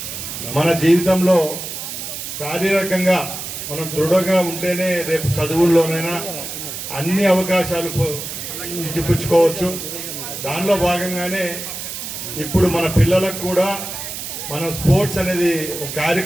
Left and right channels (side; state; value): right; noise; hiss, 7 dB below the sound